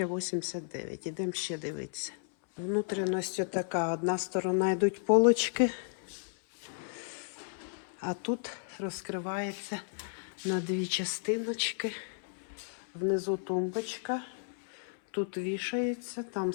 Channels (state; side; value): silent; right; 56 dB below the other